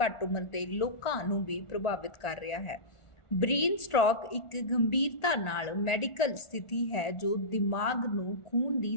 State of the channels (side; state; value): right; late; 1.4 ms